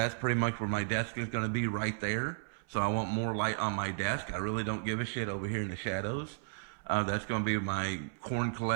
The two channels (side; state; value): left; silent; 55 dB below the other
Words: pretty much where my desk is going to be, right there. So I want more light on my desk. I really don't give a shit over here in the shadows. That's going to be my corn